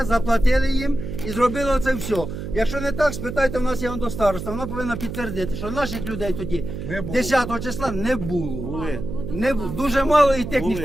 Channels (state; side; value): noise; right; hum, 7 dB below the sound